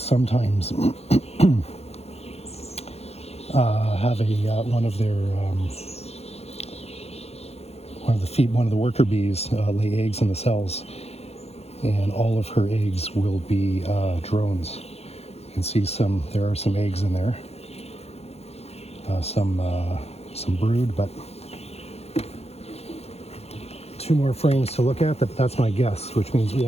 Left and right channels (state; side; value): late; right; 0.30 ms